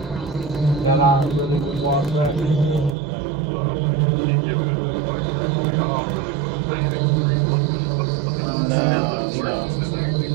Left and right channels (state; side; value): drops out; left; at 3.0 s